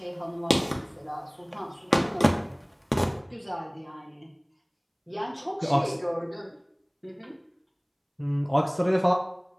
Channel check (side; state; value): both; identical; correlation 1.00